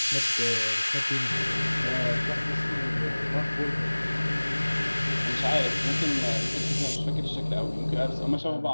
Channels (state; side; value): inverted; both; correlation -1.00